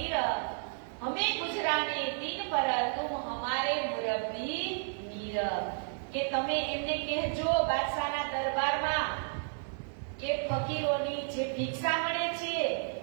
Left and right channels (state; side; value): silent; left; 56 dB below the other